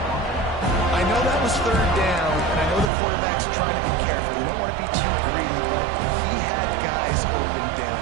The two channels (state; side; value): drops out; left; at 2.9 s